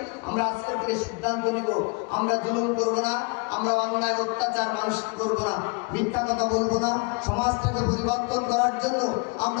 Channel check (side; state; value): right; quieter; 31.1 dB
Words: আমরা আজকে থেকে সিদ্ধান্ত নিব আমরা জুলুম করব না, আমরা অন্যায় অত্যাচার মানুষকে করব না, মিথ্যা কথা বলবো না। সমাজটাকে পরিবর্তন করার জন্য